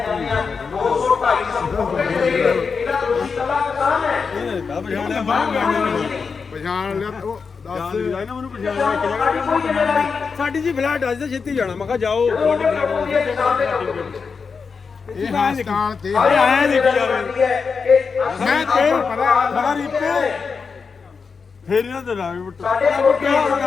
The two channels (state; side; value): quieter; right; 5.3 dB